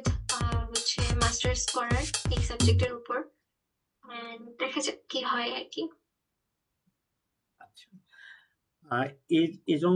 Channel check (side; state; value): both; identical; correlation 1.00